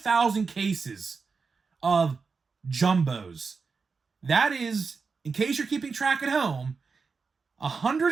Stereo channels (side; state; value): left; quieter; 4.9 dB